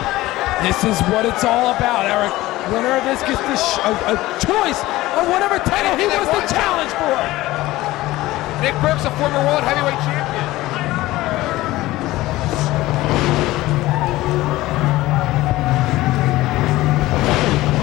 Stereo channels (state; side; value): quieter; right; 17.6 dB